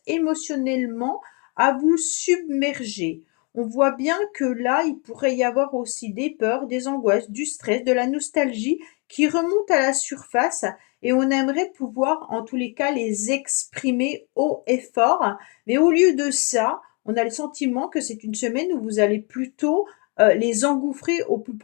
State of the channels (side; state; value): right; quieter; 33.3 dB